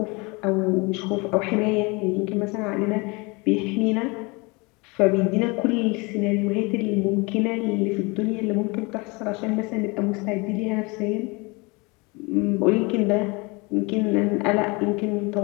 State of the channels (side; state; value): right; quieter; 27.3 dB